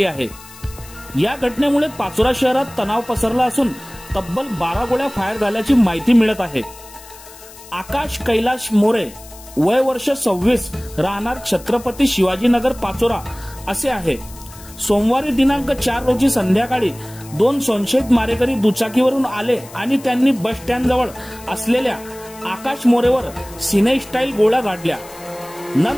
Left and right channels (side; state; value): left; noise; hiss, 19 dB below the sound